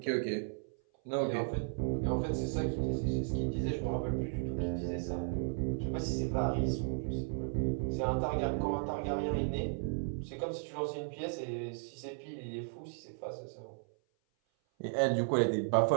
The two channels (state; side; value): silent; left; 54 dB below the other